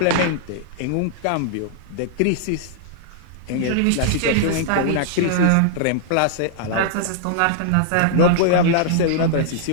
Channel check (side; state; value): both; different; correlation -0.01